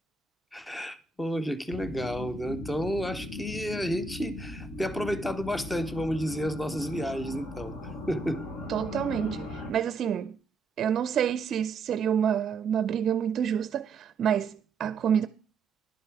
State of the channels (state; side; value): quieter; left; 4.0 dB